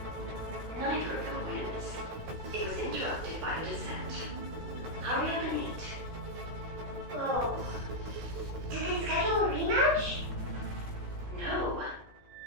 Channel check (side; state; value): left; late; 16 ms